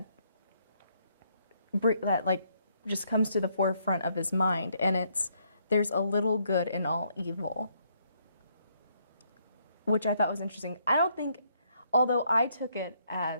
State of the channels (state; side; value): inverted; both; correlation -0.72